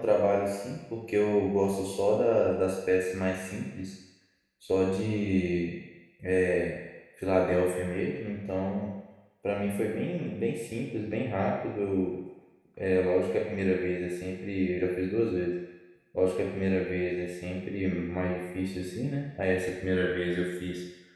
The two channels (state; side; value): identical; both; correlation 1.00